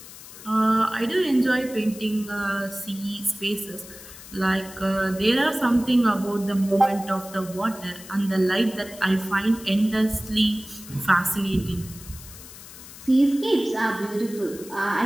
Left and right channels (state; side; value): noise; left; hiss, 16 dB below the sound